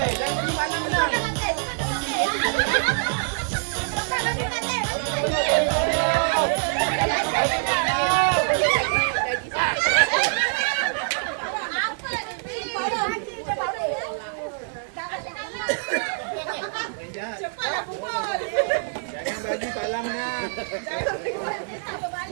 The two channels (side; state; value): left; silent; 56 dB below the other